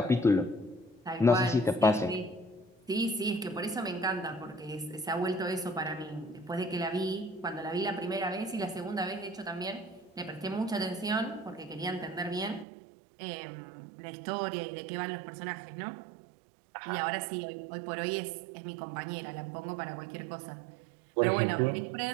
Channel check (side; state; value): left; drops out; at 12.7 s